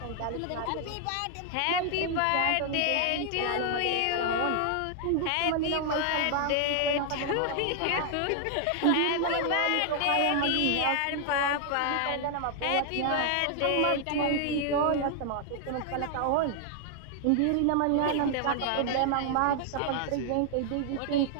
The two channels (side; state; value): both; different; correlation 0.00